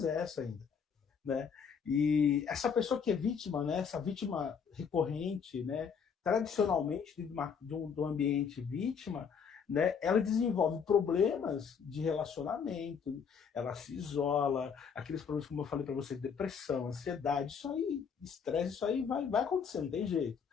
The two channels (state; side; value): quieter; right; 6.6 dB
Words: essa ainda, né? E essa pessoa que é vítima, né? Essa vítima recorrente, né? Tradicionalmente, do ambiente vítima, né? Ela desenvolve problemas de relacionamento, ela se isola, aqueles problemas, como eu falei para você, depressão, ansiedade, isso aí, estresse, isso aí vai acontecer, não tem jeito.